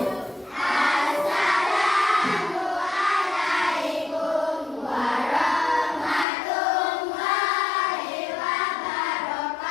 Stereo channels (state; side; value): drops out; right; at 6.2 s